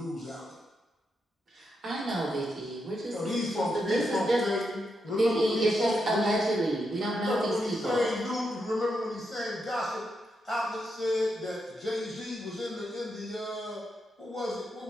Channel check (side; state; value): both; normal; correlation 0.83